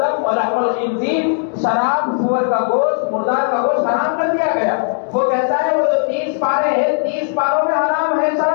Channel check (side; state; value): right; silent; 68 dB below the other